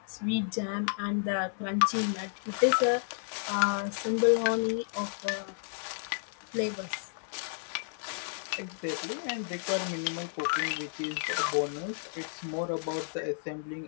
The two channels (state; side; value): silent; right; 56 dB below the other